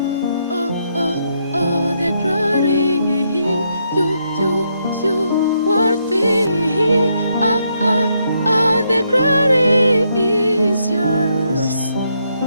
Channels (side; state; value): both; inverted; correlation -0.77